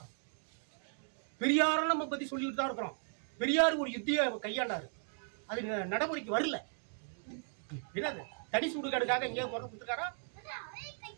பெரியாரும் நம்ம பற்றி சொல்லிட்டு தான் இருக்கிறோம். பெரியார் ஒரு யுத்தியை கையாண்டாரு, அது நடைமுறைக்கு வரல. என்னது தனி சுடுகாடுக்காக எங்கேயாவது குரல் கொடுத்துருக்காரா?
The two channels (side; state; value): left; silent; 53 dB below the other